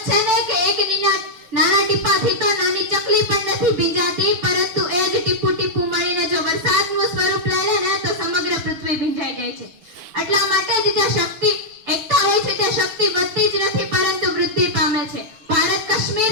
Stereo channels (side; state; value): left; late; 6.2 ms